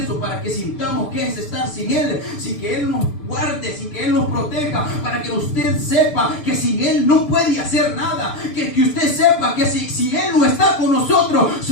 para que sintamos que es estar sin Él, sin que Él nos guarde, sin que Él nos proteja, para que usted sepa que sin Él no puede hacer nada. Que usted sepa que si Él no está con nosotros,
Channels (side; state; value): right; late; 6.7 ms